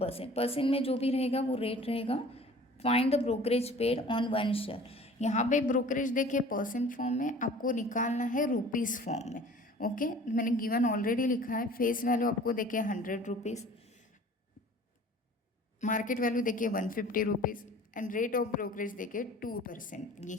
परसेंट में जो भी रहेगा वो रेट रहेगा। Find the brokerage paid on 1 share. यहाँ पे ब्रोकरेज देखिए परसेंट फॉर्म में, आपको निकालना है रुपीज़ फॉर्म में। ओके, मैंने गिवन ऑलरेडी लिखा है। फेस वैल्यू आपको देखिए 100 रुपीज़, मार्केट वैल्यू देखिए 150 rupees and rate of brokerage देखिए 2%।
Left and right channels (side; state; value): both; normal; correlation 0.47